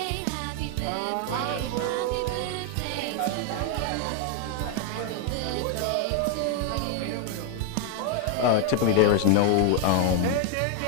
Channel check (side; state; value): both; different; correlation 0.01